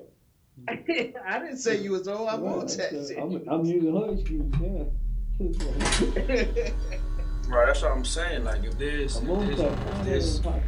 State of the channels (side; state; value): both; identical; correlation 1.00